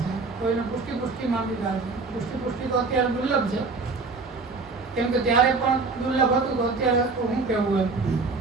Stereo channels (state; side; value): quieter; left; 4.1 dB